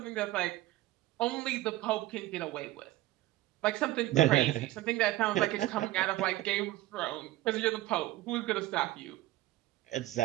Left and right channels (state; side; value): quieter; left; 16.5 dB